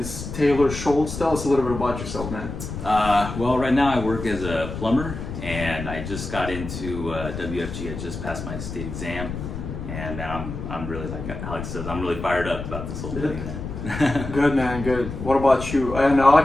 Taylor Shultz. Tell us a little bit about yourself, man. Well, right now I work as a plumber, and I just got into WFG. I just passed my state exam, and now I'm really, like Alex says, I'm really fired up about this whole thing, man. Good, man, good. What about you? And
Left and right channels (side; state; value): left; noise; rumble, 8 dB below the sound